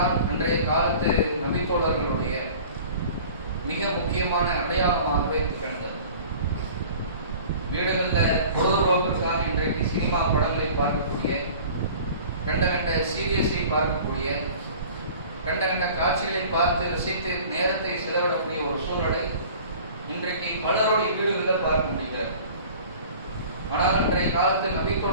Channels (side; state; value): both; inverted; correlation -0.45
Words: அன்றைய காலத்து நபித்தோழர்களுடைய மிக முக்கியமான அடையாளமாகவே திகழ்ந்தது. வீடுகளில் பொழுதுபோக்கிற்காக இன்றைக்கு சினிமா படங்களை பார்க்கக்கூடிய, கண்ட சீரியஸை பார்க்கக்கூடிய, கண்ட காட்சிகளை பார்த்து ரசித்து நேரத்தை செலவிடக்கூடிய ஒரு சூழ்நிலை இன்றைக்கு பலருடைய வீடுகளில் பார்க்க முடிகிறது. ஆனால் இன்றைய காலத்தில்